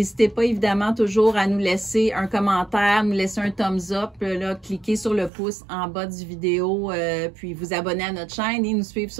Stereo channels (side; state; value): left; drops out; at 5.3 s